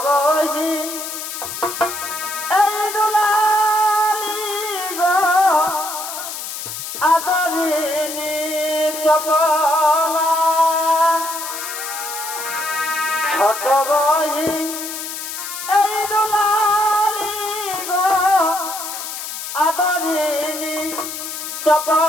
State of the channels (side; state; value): left; noise; hiss, 7 dB below the sound